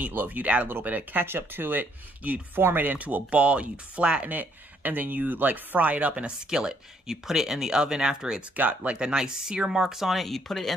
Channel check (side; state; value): both; normal; correlation 0.69